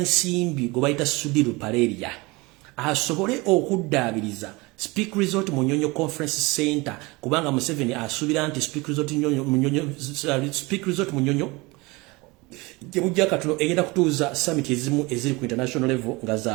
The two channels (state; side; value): quieter; left; 24.3 dB